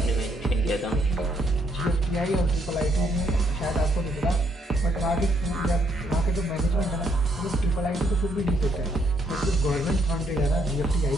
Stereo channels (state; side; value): normal; both; correlation 0.72